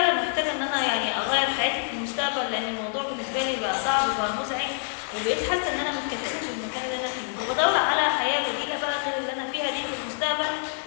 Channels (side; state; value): right; silent; digital silence